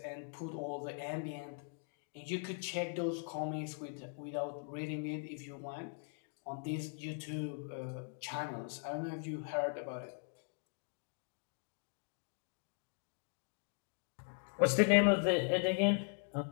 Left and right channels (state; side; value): silent; right; 51 dB below the other